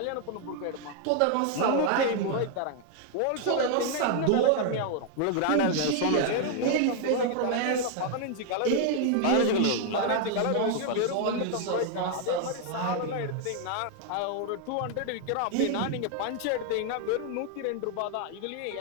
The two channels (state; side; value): different; both; correlation 0.00